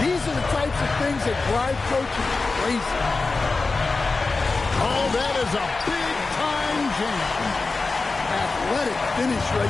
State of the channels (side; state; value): right; quieter; 3.8 dB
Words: are the types of things that drive coaches crazy. Oh, that is a big-time jam. Athletic finish